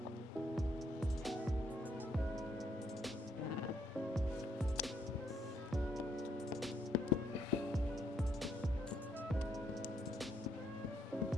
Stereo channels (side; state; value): both; normal; correlation 0.72